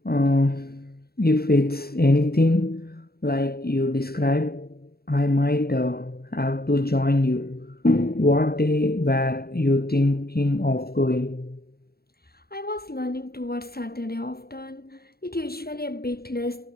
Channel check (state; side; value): late; right; 0.45 ms